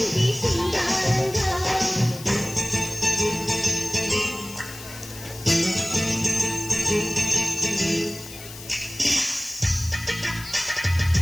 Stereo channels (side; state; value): left; noise; hiss, 14 dB below the sound